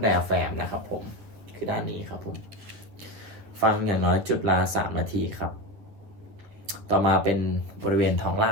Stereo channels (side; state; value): left; late; 10 ms